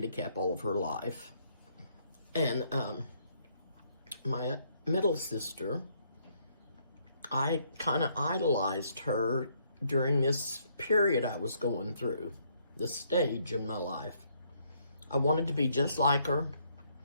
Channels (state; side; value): inverted; both; correlation -0.70